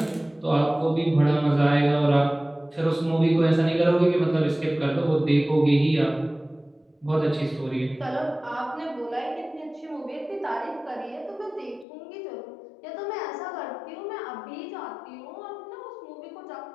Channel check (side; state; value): right; drops out; at 11.9 s